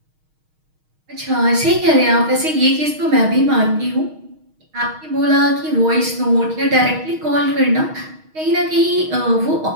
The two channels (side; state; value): left; late; 6.4 ms